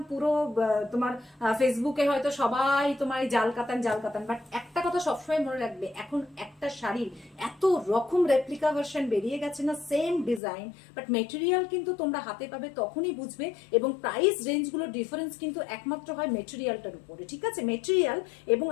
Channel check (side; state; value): right; drops out; at 10.4 s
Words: পুরো তোমার ফেসবুকে হয়তো সবাই তোমার এই জাল কাতান জাল কাতান, বাট একটা কথা সবসময় মনে রাখবে, এখন একটা শাড়ির এত রকম রেপ্লিকা ভার্সন বেরিয়ে গেছে না, সেম ডিজাইন বাট মেটেরিয়াল কিন্তু তোমরা হাতে পাবে তখনই বুঝবে। এবং প্রাইস রেঞ্জগুলো ডিফারেন্স কিন্তু একমাত্র হয় মেটেরিয়ালটার উপরে, ঠিক আছে? মেটেরিয়াল এবং